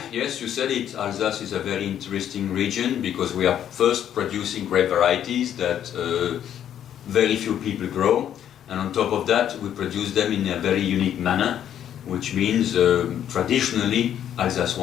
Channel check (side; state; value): right; quieter; 10.1 dB